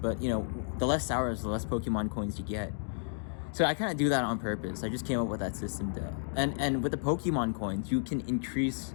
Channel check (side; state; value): right; silent; digital silence